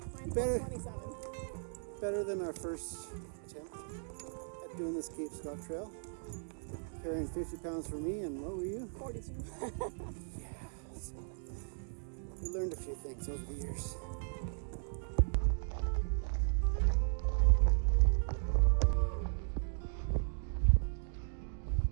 mine's better, 27. Better than our first attempt at doing this Cape Scott Trail. Carrying 50 pounds for me, and what were you? 42. Yeah, so we learned a few things over the years.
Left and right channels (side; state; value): left; silent; digital silence